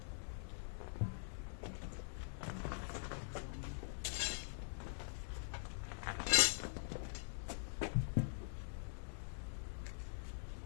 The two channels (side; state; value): right; silent; digital silence